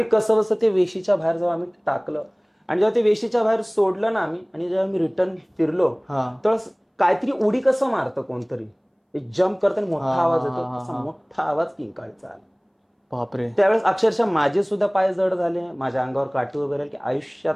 कसं बसं ते वेशीच्या बाहेर जेव्हा आम्ही टाकलं आणि जेव्हा ते वेशीच्या बाहेर सोडलं ना आम्ही, आणि जेव्हा मी रिटर्न फिरलो, तर काहीतरी उडी कसं मारतं कोणतरी, एक जम्प करताना मोठा आवाज येतो, तसा मोठा आवाज किंकाळीचा आला. बापरे. त्यावेळेस अक्षरशः माझे सुद्धा पाय जड झाले, माझ्या अंगावर काठी वगैरे, की आयुष्यात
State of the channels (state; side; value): identical; both; correlation 1.00